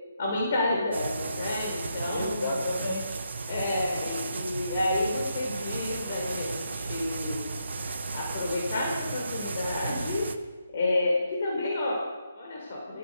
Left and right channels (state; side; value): inverted; both; correlation -0.80